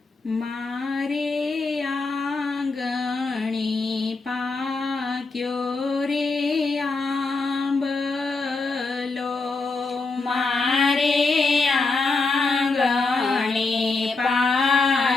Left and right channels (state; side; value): quieter; right; 3.8 dB